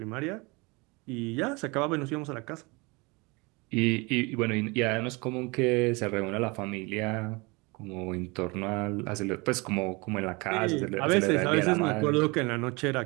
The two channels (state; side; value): quieter; left; 26.8 dB